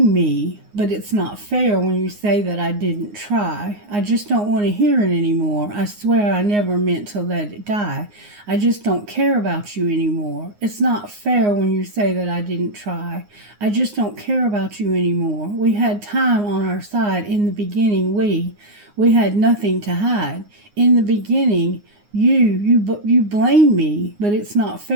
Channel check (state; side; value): late; left; 9.6 ms